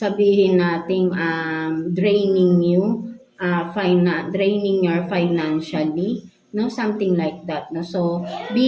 nating draining you, draining your financially, no, something like that, no, so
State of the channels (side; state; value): both; identical; correlation 1.00